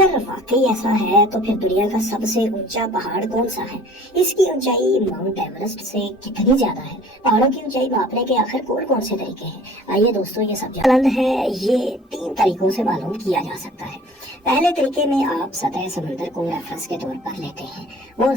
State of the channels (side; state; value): both; normal; correlation 0.48